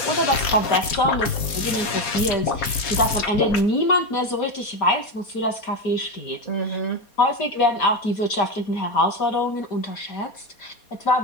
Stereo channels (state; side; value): late; right; 4.2 ms